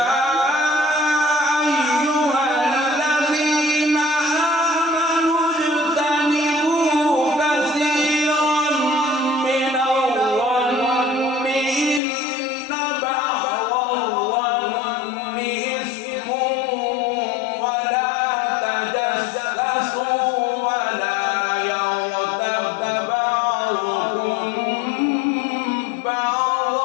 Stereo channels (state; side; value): drops out; right; at 12.0 s